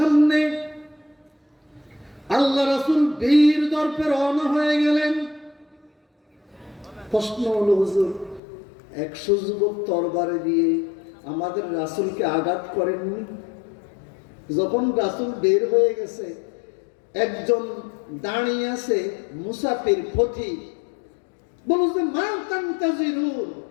আল্লাহ রাসূল বীর দর্পে রওনা হয়ে গেলেন। প্রশ্ন হলো, হুজুর 100 যুবক তরবারি দিয়ে আমাদের রাসূলকে আঘাত করেননি? যখন রাসূল বের হয়ে গেছে, একজন দাঁড়িয়ে আছে মুসাফির ফতি, বলছে, মা তানতাজিরুন,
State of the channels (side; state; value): right; drops out; at 8.4 s